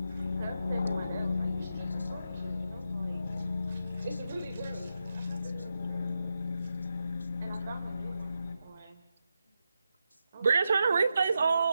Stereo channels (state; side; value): inverted; both; correlation -0.86